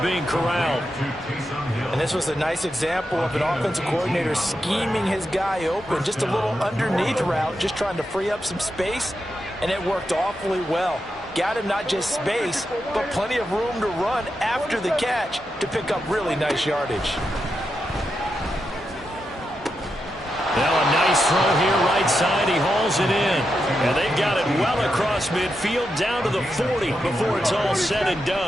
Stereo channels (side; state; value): both; normal; correlation 0.86